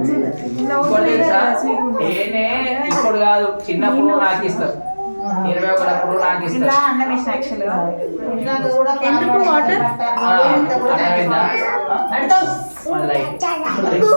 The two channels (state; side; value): inverted; both; correlation -1.00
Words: తేనే ఇప్పుడు కాదు చిన్నప్పుడు నాకు ఇస్తారు 21 అప్పుడు నాకు ఇస్తారు అన్నం వేసిన ఎందుకు వాటర్